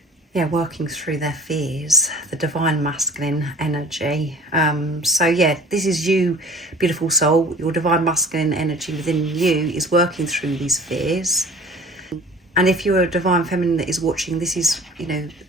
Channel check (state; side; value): normal; both; correlation 0.46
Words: yeah, working through their fears, the divine masculine energy. So yeah, this is you, beautiful soul. Your divine masculine energy within you is working through these fears. And if you're a divine feminine that is watching, this is, you know,